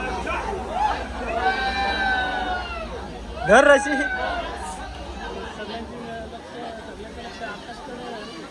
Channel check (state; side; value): identical; both; correlation 1.00